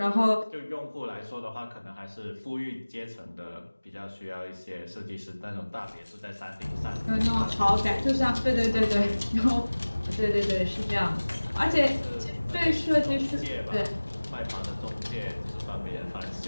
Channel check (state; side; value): inverted; both; correlation -1.00